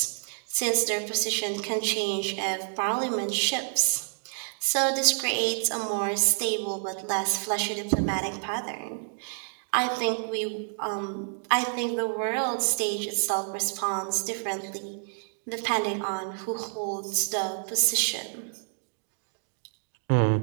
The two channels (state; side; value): silent; left; digital silence